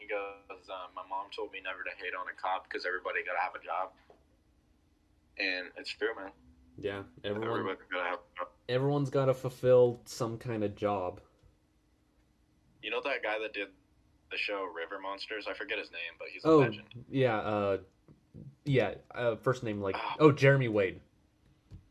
goes, "My mom told me never to hate on a cop because everybody got to have a job," and it's true, man. yeah, Everybody got to have a job. everyone's got to fulfill some kind of job. You know that guy that did the show River Monsters? I forget his name, but he's a Oh, legend. yeah, first name like Oh, Jeremy Wade.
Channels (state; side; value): identical; both; correlation 1.00